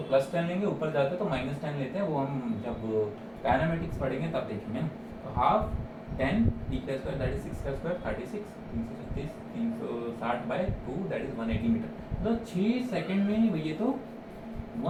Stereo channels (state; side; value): identical; both; correlation 1.00